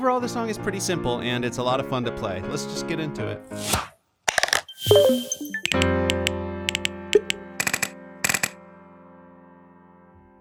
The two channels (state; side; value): identical; both; correlation 1.00